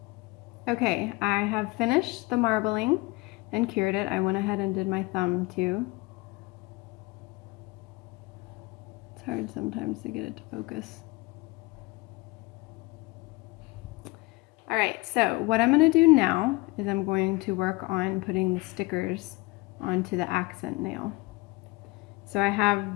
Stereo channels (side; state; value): right; quieter; 23.0 dB